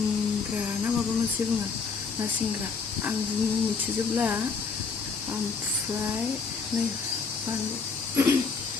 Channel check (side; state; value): right; quieter; 5.1 dB